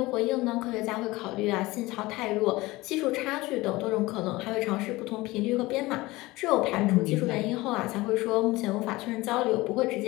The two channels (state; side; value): quieter; right; 20.2 dB